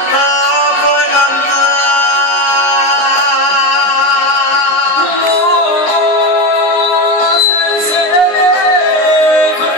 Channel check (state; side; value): late; right; 19 ms